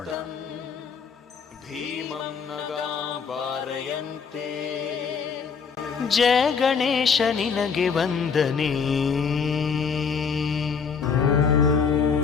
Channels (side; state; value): right; quieter; 6.0 dB